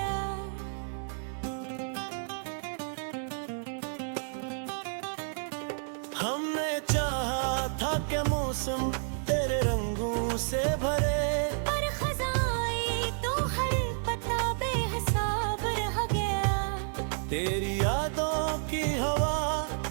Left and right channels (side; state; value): left; silent; digital silence